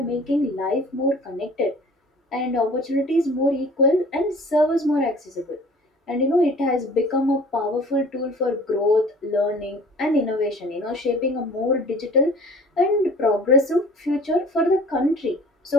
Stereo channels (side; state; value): both; normal; correlation 0.48